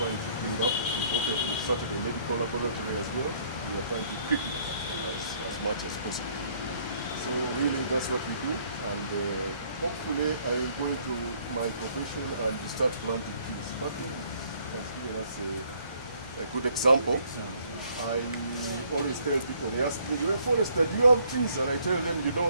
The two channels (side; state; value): both; inverted; correlation -0.64